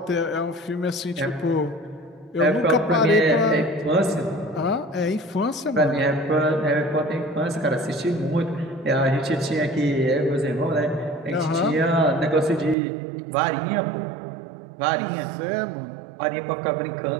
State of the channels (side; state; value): left; drops out; at 12.8 s